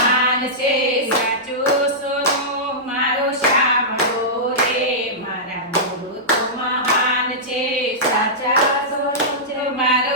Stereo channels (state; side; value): normal; both; correlation -0.14